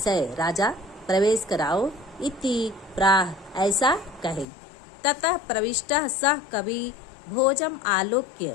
राजा प्रवेश कराओ। इति प्राह, ऐसा कहे। ततः प्रविष्टः सह कवि भोजम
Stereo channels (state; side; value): drops out; right; at 4.5 s